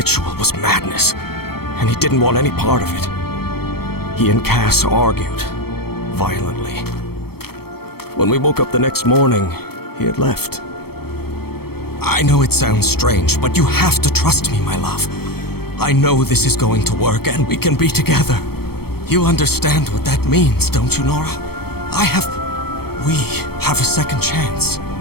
was madness, and he didn't want any part of it. He and Cass argued violently. When we woke up the next morning, he had left. I know it sounds strange, but you have to trust me, my love. I know this is going to work, and we can be together. You understand what that means, don't you, Nora? We have a second chance.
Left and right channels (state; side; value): late; right; 0.95 ms